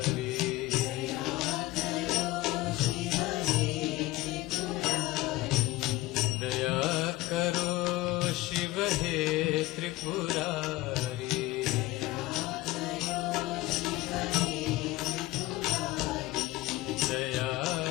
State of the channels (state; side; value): quieter; right; 18.3 dB